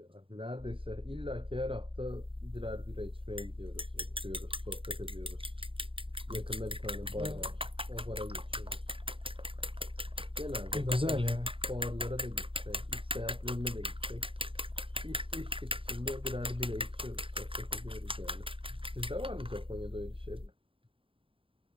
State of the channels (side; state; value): left; late; 0.26 ms